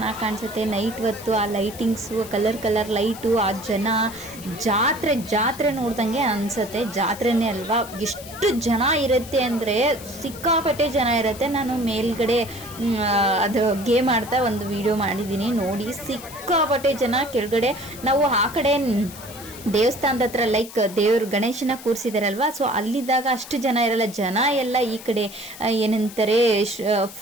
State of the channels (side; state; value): left; noise; hiss, 16 dB below the sound